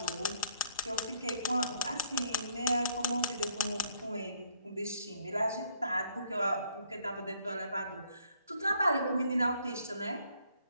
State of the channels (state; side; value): inverted; both; correlation -0.66